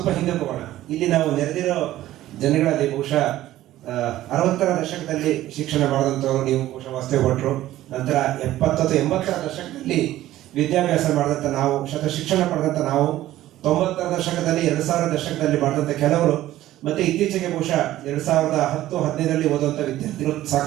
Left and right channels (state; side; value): quieter; left; 14.5 dB